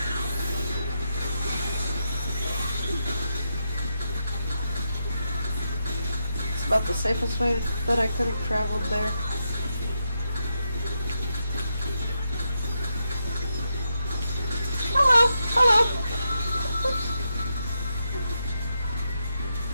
about the safest way that I could have traveled there. Hello, hello.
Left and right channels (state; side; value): inverted; both; correlation -0.84